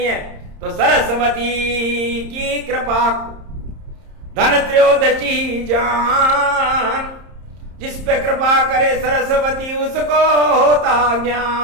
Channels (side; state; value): left; late; 30 ms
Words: है। तो सरस्वती की कृपा को धन त्रयोदशी जान। जिस पे कृपा करे सरस्वती उसको होता